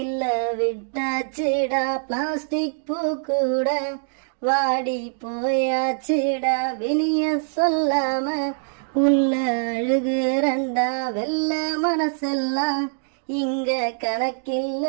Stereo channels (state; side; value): silent; left; digital silence